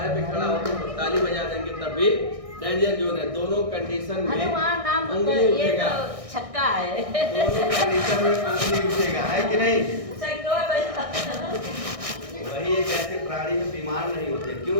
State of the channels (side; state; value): left; late; 1.6 ms